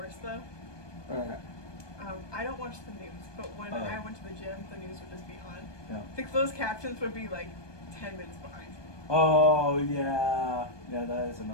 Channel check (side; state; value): right; late; 1.2 ms